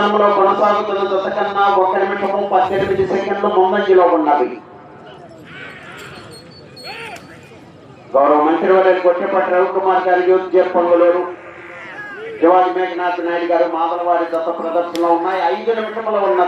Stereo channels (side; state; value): both; identical; correlation 1.00